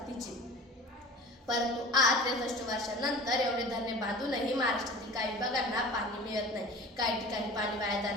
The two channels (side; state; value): both; normal; correlation 0.40